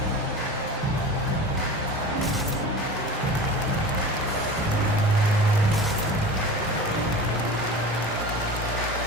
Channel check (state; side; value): normal; both; correlation 0.34